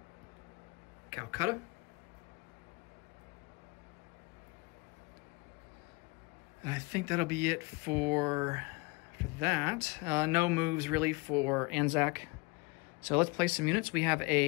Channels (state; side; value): quieter; right; 26.6 dB